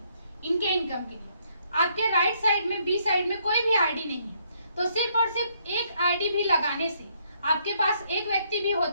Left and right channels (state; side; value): inverted; both; correlation -0.70